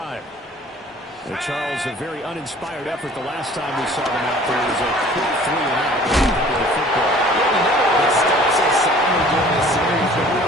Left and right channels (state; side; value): normal; both; correlation 0.50